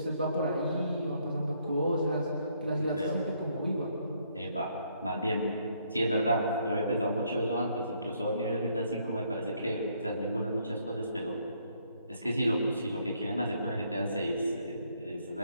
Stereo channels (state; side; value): inverted; both; correlation -0.70